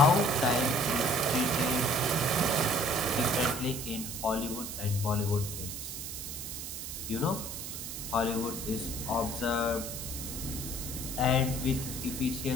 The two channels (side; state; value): right; noise; hiss, 7 dB below the sound